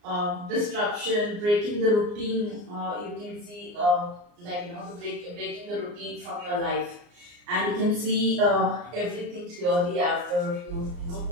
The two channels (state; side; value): late; left; 34 ms